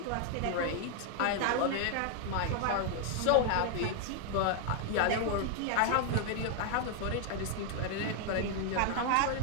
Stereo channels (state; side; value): different; both; correlation 0.00